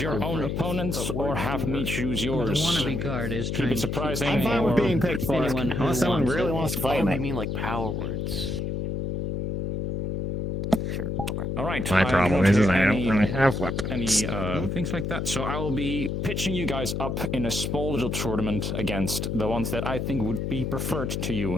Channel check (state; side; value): noise; left; hum, 2 dB below the sound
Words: your own opponents or have me choose yours? The wannabe guard is Keep trying it surprising. I'm fine with being picked for it. anyone who Unless someone wants really it. wants to fight me. You mean like power words? Sure. Okay. All right. My I problem don't is hear I don't any- really have weapons. Any things like that. So I will be pitching you guys up in a small little tournament against the ones that I think would be preferred to